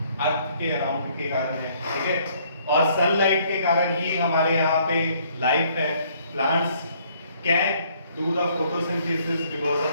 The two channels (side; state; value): both; inverted; correlation -0.64